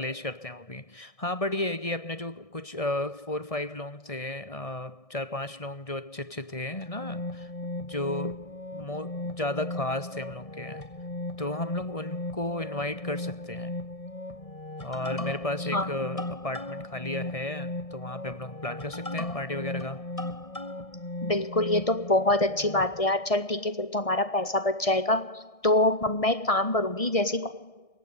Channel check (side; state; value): right; late; 1.6 ms